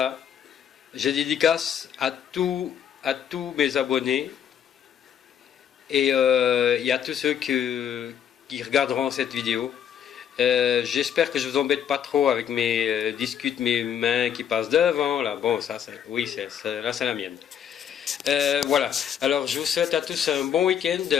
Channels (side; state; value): right; quieter; 9.0 dB